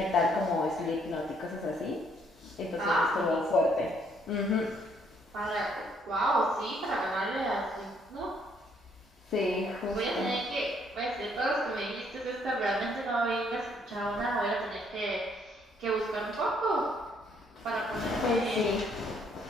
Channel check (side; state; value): both; normal; correlation 0.68